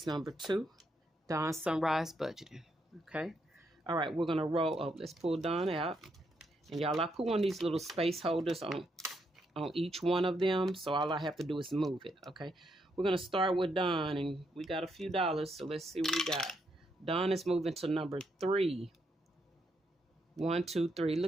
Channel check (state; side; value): normal; both; correlation 0.78